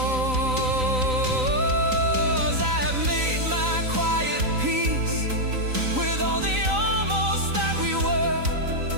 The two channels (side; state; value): left; late; 3.9 ms